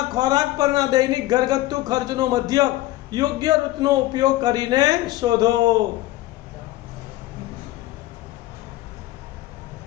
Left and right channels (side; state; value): right; quieter; 16.7 dB